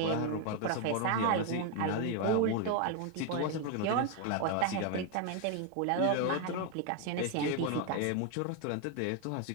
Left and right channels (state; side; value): different; both; correlation 0.01